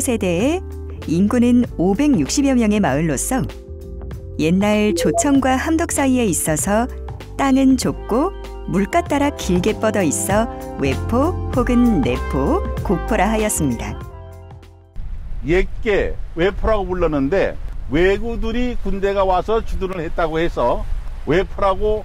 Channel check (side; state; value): both; identical; correlation 1.00